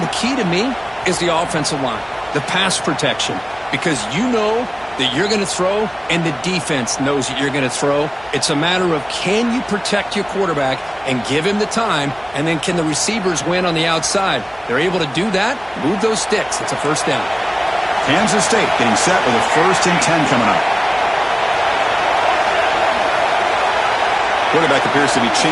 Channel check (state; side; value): noise; right; hum, 28 dB below the sound